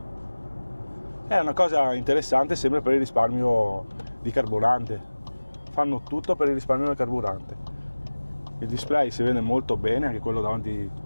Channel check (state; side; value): inverted; both; correlation -1.00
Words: È una cosa interessante, sempre per il risparmio di carburante. Fanno tutto per il risparmio del carburante. Il display si vede molto bene, anche quello davanti